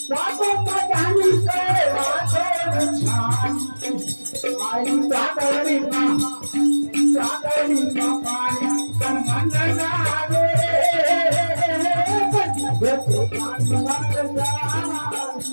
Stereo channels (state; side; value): inverted; both; correlation -1.00